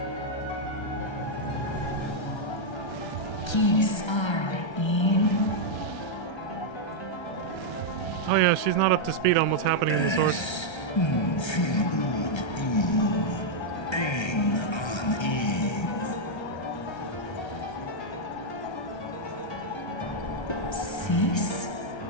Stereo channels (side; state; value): right; late; 1.3 ms